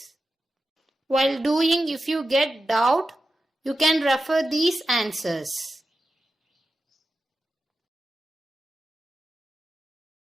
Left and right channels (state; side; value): normal; both; correlation 0.92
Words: While doing, if you get doubt, you can refer these answers.